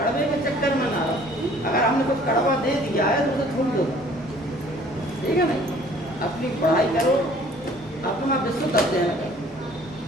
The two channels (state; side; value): normal; both; correlation 0.54